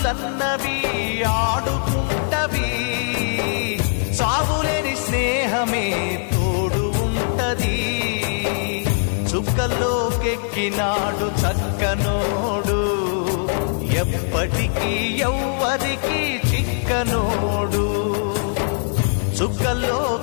ఆడుకుంటవి, సాగులేని స్నేహమే తోడు ఉంటది. చుక్కల్లోకెక్కినాడు చక్కనోడు, ఎప్పటికీ ఎవ్వరికి చిక్కనోడు.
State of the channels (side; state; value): right; silent; digital silence